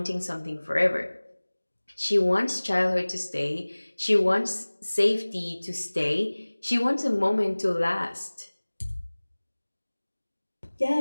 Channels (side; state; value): both; inverted; correlation -1.00